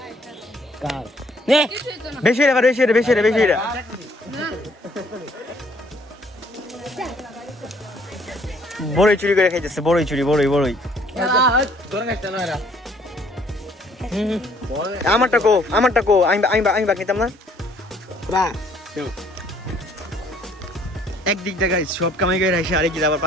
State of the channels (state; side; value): normal; both; correlation 0.62